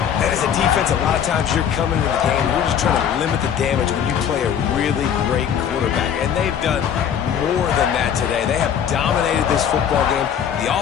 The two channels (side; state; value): right; quieter; 8.5 dB